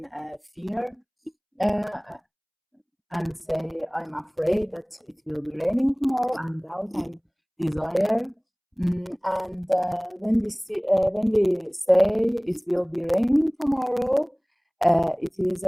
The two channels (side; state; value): both; identical; correlation 1.00